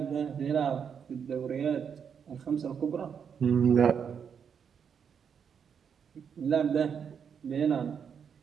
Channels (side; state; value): left; quieter; 7.2 dB